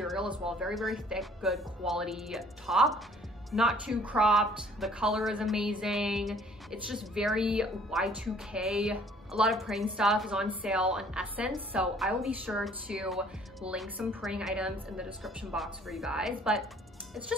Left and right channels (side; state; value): both; normal; correlation 0.57